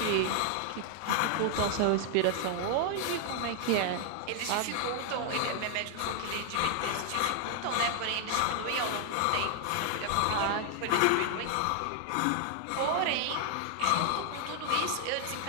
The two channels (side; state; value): both; different; correlation 0.00